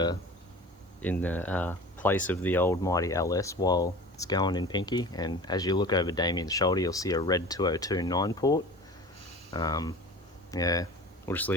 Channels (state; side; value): normal; both; correlation 0.38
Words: place of the old mighty LS while it's going in Pinky. And as you look over Damien's shoulder, you'll see a red 202 9-port. Yeah, we'll just